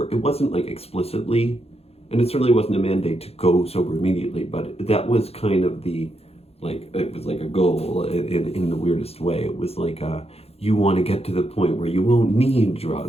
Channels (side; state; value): right; late; 0.29 ms